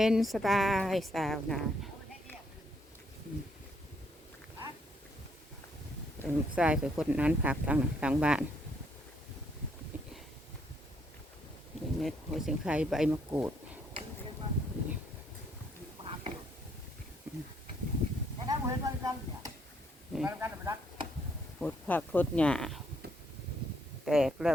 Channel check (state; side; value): normal; both; correlation 0.71